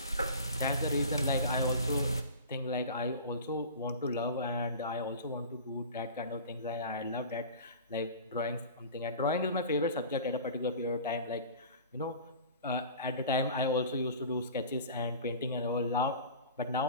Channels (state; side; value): inverted; both; correlation -0.38